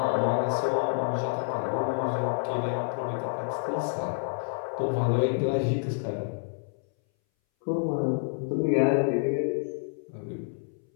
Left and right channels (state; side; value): silent; right; 59 dB below the other